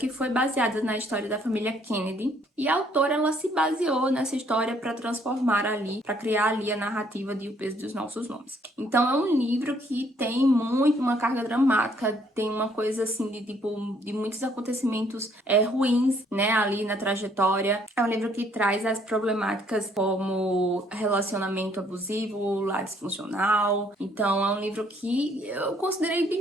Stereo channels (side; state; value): both; normal; correlation 0.65